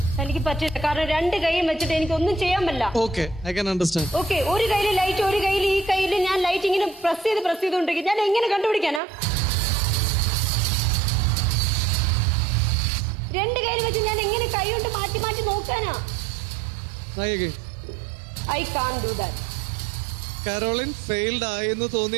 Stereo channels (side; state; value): left; drops out; at 9.0 s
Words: എനിക്ക് പറ്റില്ല. കാരണം 2 കൈയും വെച്ചിട്ട് എനിക്ക് ഒന്നും ചെയ്യാൻ പറ്റില്ല. Okay, I can understand. Okay, ഒരു കയ്യിൽ ലൈറ്റ്, ഒരു കയ്യിൽ ഈ കയ്യിൽ ഞാൻ ലൈറ്റ് ഇങ്ങനെ പ്രസ് ചെയ്തുകൊണ്ടിരിക്കും. ഞാൻ എങ്ങനെ കണ്ടുപിടിക്കാനാ? 2 കയ്യിൽ വെച്ച് ഞാൻ എങ്ങനെ കൈ കൊണ്ട് മാറ്റി മാറ്റി നോക്കാനാ? Try again. I can't do that. Caroline failed ആയെന്ന്